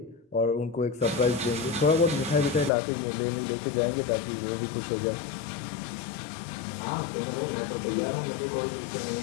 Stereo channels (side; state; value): right; drops out; at 2.7 s